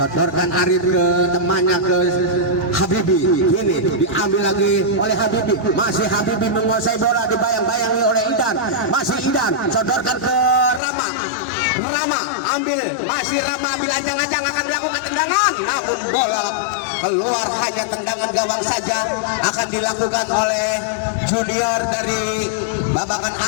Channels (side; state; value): right; drops out; at 10.8 s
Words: Arif ke temannya, ke Habibi. Ini diambil lagi oleh Habibi, masih Habibi menguasai bola, dibayang-bayangi oleh Idan. Masih Idan, sodorkan ke Rama. Rama ambil, masih Rama ambil, ajang-ajang akan dilakukan tendangan, namun bola keluar, hanya tendangan gawang saja akan dilakukan oleh junior dari Babakan